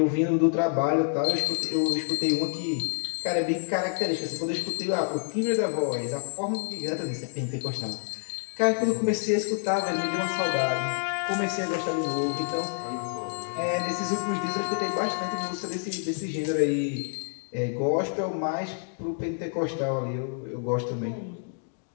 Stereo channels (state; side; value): silent; right; digital silence